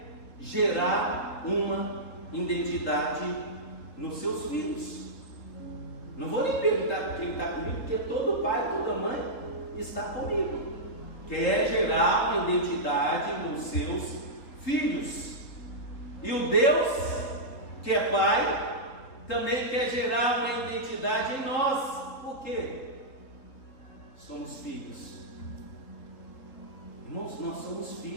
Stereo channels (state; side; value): late; right; 3.9 ms